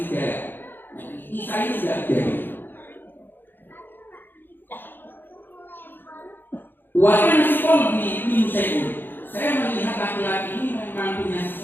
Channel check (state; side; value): late; right; 0.096 ms